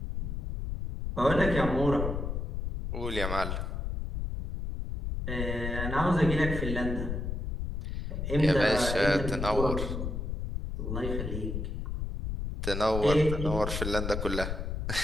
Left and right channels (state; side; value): noise; left; rumble, 3 dB below the sound